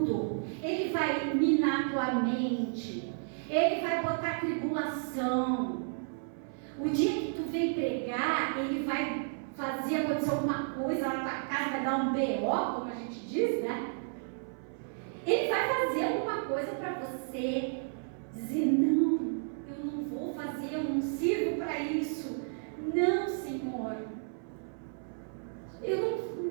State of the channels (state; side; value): silent; left; 55 dB below the other